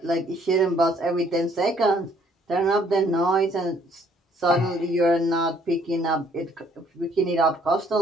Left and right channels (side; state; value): both; normal; correlation 0.63